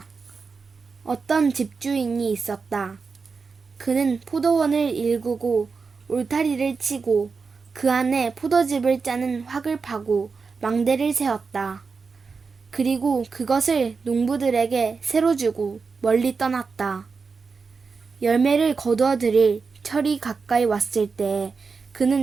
어떤 집주인이 있었다. 그는 포도원을 일구고 울타리를 치고 그 안에 포도즙을 짜는 확을 파고 망대를 세웠다. 그리고 그것을 농부들에게 새로 주고 멀리 떠났다. 열매를 거두어 들일 철이 가까이 왔을 때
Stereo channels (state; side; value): quieter; left; 4.9 dB